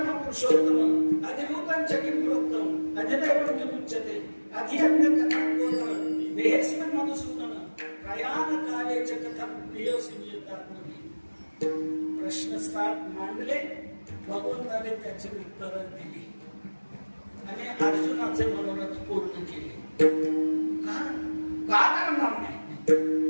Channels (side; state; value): both; inverted; correlation -1.00